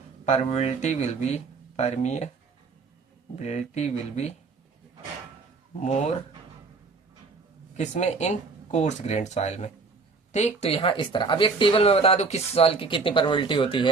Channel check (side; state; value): left; quieter; 4.3 dB